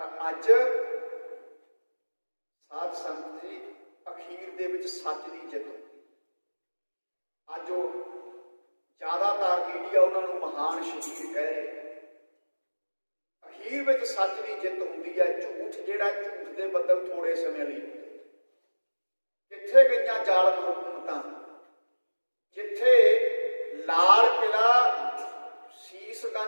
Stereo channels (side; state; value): both; inverted; correlation -1.00